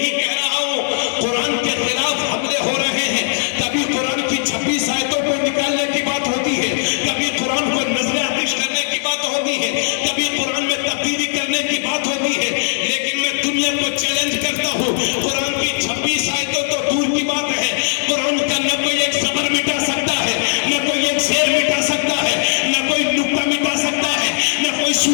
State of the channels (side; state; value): right; silent; 57 dB below the other